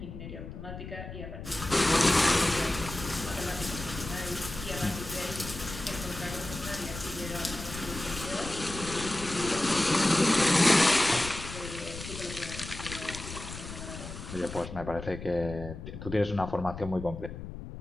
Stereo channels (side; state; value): left; noise; rumble, 10 dB below the sound